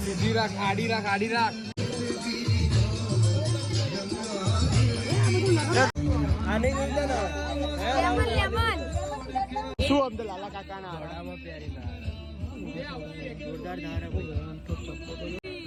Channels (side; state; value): both; identical; correlation 1.00